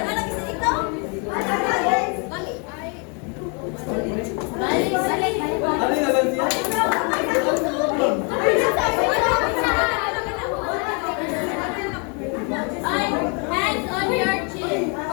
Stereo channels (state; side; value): quieter; right; 35.5 dB